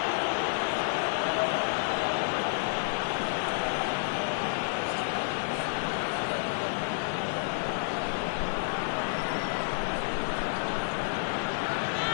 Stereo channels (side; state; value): right; silent; 58 dB below the other